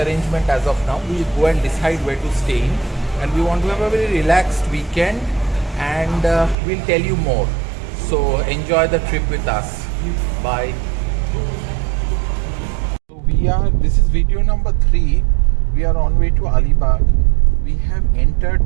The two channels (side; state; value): left; drops out; at 6.6 s